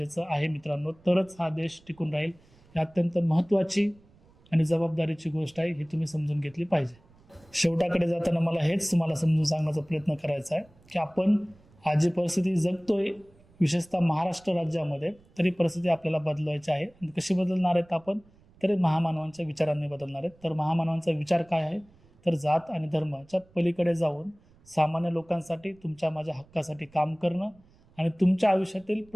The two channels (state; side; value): noise; right; rumble, 29 dB below the sound